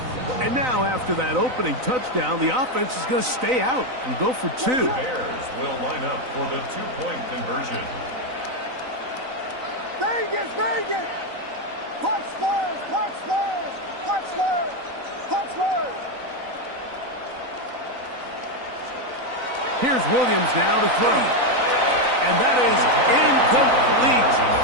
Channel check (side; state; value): left; late; 3.9 ms